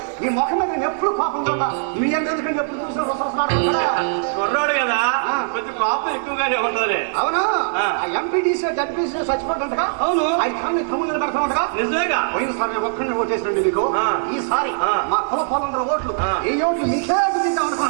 మీ ముఖం మీద నేను ఎప్పుడు కోపం చూడా. మీ ఎందుకంటే ఎప్పుడు చూసిన కుర్రాడు కదా, కొంచెం కోపం ఎక్కువగానే ఉంటది. అవును, ఆ ఎంపీటీసీ జడ్పీసీ చచ్చిపోతుంటగా. అవును, అది కానీ తమ్ముళ్ళు పెడతా ఉండగా. నిజమేగా. పోయినసారి నేను ఒక్కడిని ఓటేసినండి మీకు. ఈసారి మా కుల పొలందరూ ఓట్లు, ఈ ఓట్లు మీకే గుర్తిద్దాం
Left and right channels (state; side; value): silent; left; digital silence